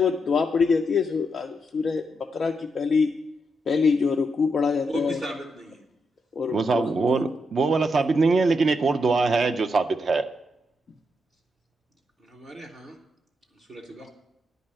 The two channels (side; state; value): both; normal; correlation 0.82